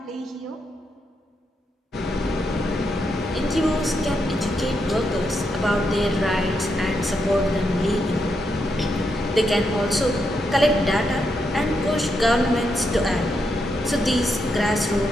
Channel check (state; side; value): normal; both; correlation 0.82